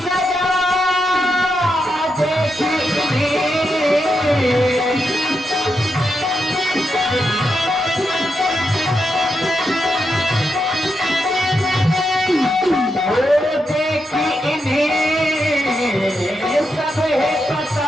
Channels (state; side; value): normal; both; correlation 0.84